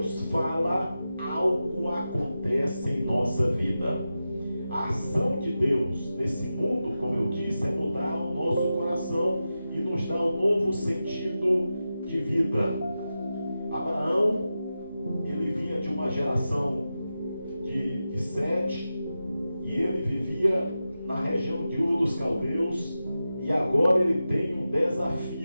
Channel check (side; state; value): both; inverted; correlation -0.92